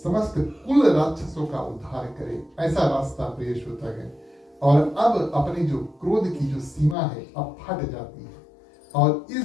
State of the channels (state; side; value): drops out; right; at 7.0 s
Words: कुल राक्षसों का उद्धार करे, ऐसा रास्ता प्रिय श्रोतागण। और अब अपनी जो क्रोध की जो सीमा है अब फट जाती है, और